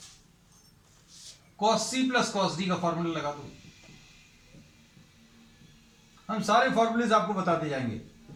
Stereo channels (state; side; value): identical; both; correlation 1.00